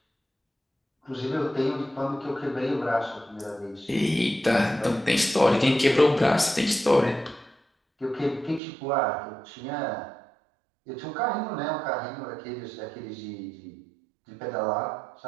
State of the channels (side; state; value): left; drops out; at 8.6 s